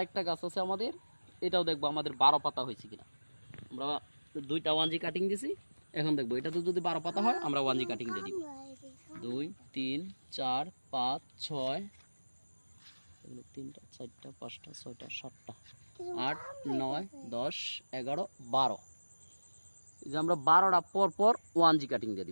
গাছ আছে আমাদের, এটাও দেখবো আমাদের 12 পাতা হয়েছে কিনা। আমরা 2টা 1G কাটিং দিছি, এখন দেখবো এটা তো যদি 12 পাতা হয় আমরা 1G কাটিং দিয়ে দিব। 2 3 4 5 6, 3টা 4টা 5টা 6টা 7টা 8 9 10 11 12, এই যে আমরা 12টা পর পর 1G কাটিং দিয়ে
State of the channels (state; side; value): inverted; both; correlation -1.00